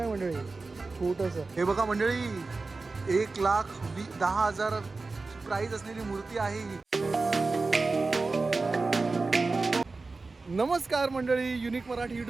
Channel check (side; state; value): left; quieter; 3.8 dB